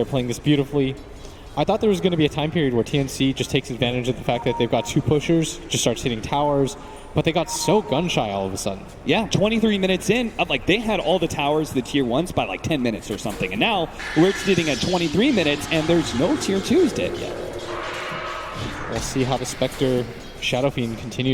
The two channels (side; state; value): both; identical; correlation 1.00